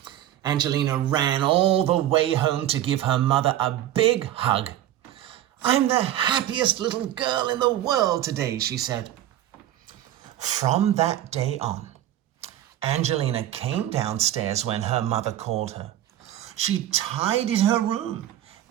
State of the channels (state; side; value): quieter; left; 12.5 dB